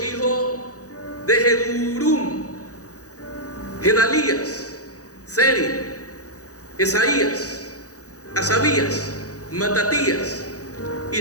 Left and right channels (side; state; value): right; late; 0.66 ms